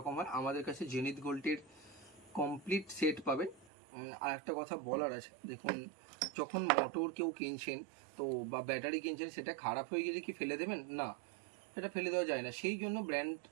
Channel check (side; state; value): left; drops out; at 3.7 s